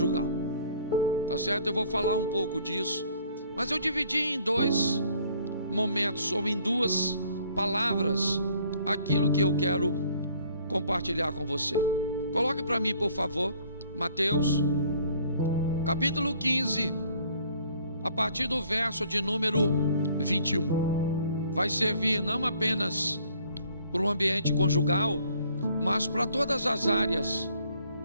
tá certo? Eu vou falar um pouco disso, mas eu dividi em dois momentos, ou em duas palavras, aquilo que eu quero compartilhar com você. Coloque para mim, por favor, Mateus capítulo 15, a partir do verso de número 21. Vai servir não apenas para o ambiente conjugal, mas para todas as áreas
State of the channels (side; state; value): both; inverted; correlation -0.60